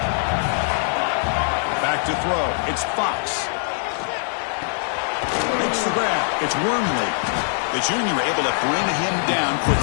Back to throw. It's Fox. Makes the grab. It's Wormley. The junior able to bring him down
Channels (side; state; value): right; silent; 64 dB below the other